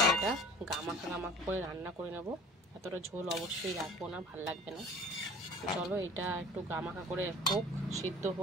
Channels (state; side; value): normal; both; correlation 0.45